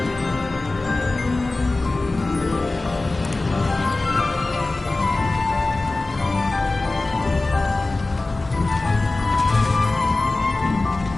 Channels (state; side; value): quieter; right; 3.2 dB